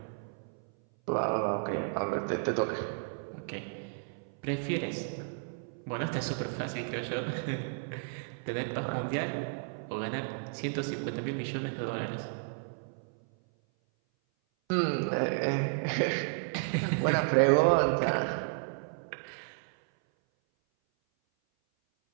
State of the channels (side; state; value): left; silent; 56 dB below the other